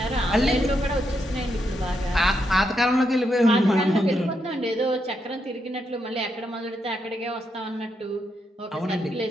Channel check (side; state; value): both; normal; correlation 0.81